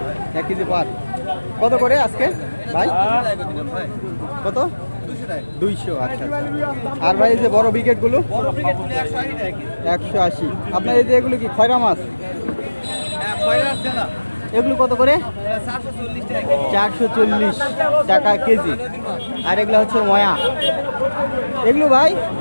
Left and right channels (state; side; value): inverted; both; correlation -1.00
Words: 1 কেজি পার। কত করে আজকে ভাই? কত? 200। আচ্ছা। আর ভাই এই যে বড় ব্রিগেডগুলো? 180। আপনার এই যে এগুলো কি খয়রা মাছ? এগুলো কত করে? 440 টাকা কেজি। আর এগুলো হচ্ছে ময়া। এগুলো ভাই